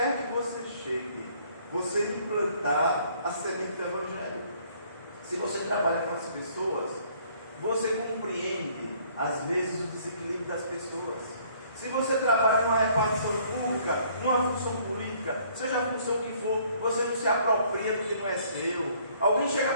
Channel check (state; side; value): inverted; both; correlation -0.61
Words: que você chegue, você implantar a semente do Evangelho. Se você trabalha com as pessoas, você compreende, às vezes, o desequilíbrio das pessoas. Se você trabalha numa repartição pública, numa função política, seja a função que for, você não se apropria do que não é seu. Alguém chega